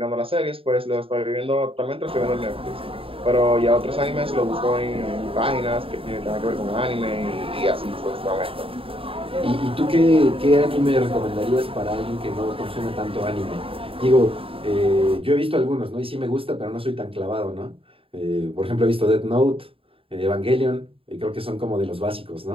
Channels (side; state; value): left; late; 0.27 ms